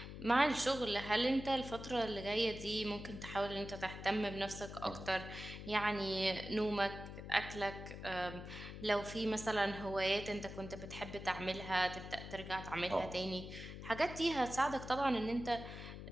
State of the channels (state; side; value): noise; left; hum, 10 dB below the sound